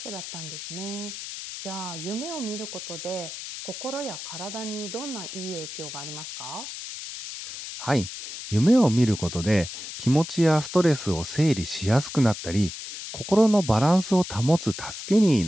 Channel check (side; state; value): left; noise; hiss, 9 dB below the sound